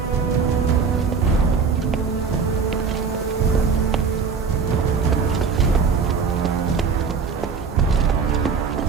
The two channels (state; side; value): quieter; left; 5.6 dB